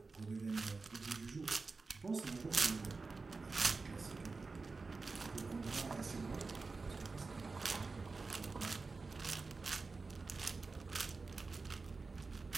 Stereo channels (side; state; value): left; quieter; 4.1 dB